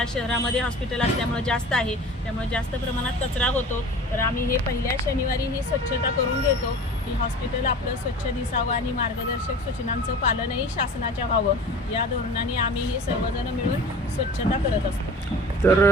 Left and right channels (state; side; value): normal; both; correlation 0.39